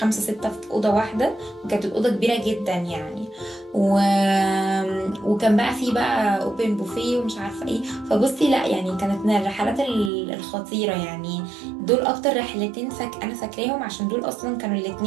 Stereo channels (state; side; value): drops out; left; at 10.1 s